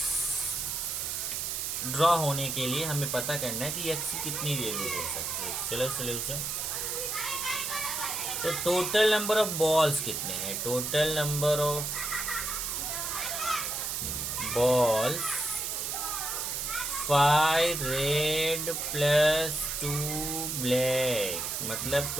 ड्रॉ होने के लिए हमें पता करना है कि x की कितनी वैल्यू हो सकती है। चलो सोल्यूशन, तो टोटल नंबर ऑफ बॉल्स कितने हैं, total number of balls 5 red plus 2 black, मतलब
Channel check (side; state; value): right; noise; hiss, 2 dB below the sound